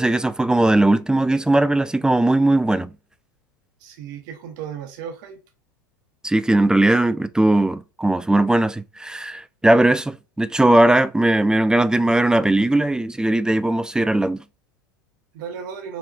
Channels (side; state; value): both; normal; correlation 0.96